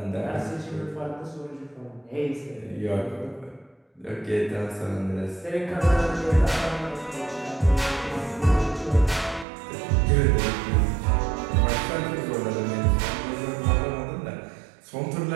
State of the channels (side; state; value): left; drops out; at 9.5 s